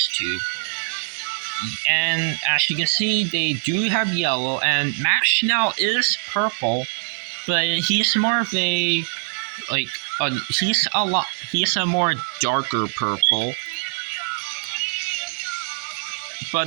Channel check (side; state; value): left; silent; digital silence